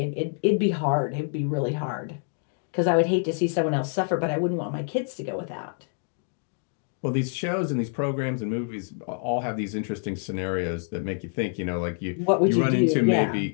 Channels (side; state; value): right; silent; 60 dB below the other